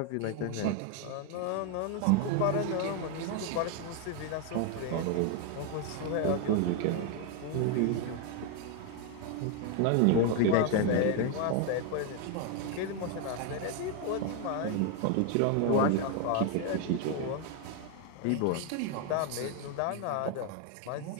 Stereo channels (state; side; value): different; both; correlation 0.01